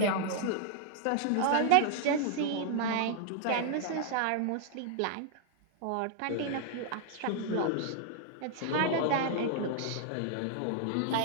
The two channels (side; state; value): both; different; correlation -0.01